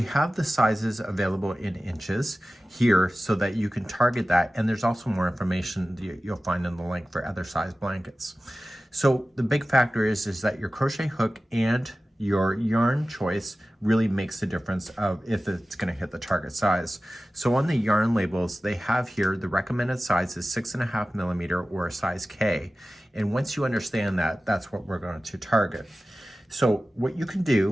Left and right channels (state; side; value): normal; both; correlation 0.96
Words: have the sizes available in inches here so that you can target that. And there's also more information that you'll find in the link for other size blankets. So the big factor is that your crochet hook and your yarn choice really makes the difference of if it's going to hit the target size. So on the yarn labels, they have here the recommended size is 6.5 millimeter or a size K. And once you understand that, that's what we're going to target. So what you can